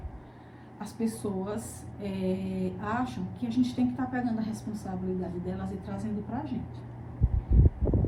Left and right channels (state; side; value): identical; both; correlation 1.00